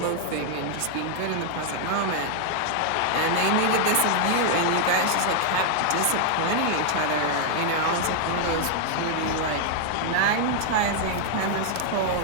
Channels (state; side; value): different; both; correlation 0.00